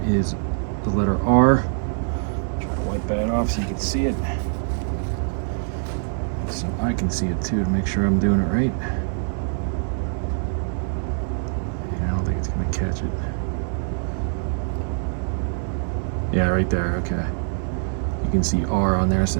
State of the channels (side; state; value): left; silent; digital silence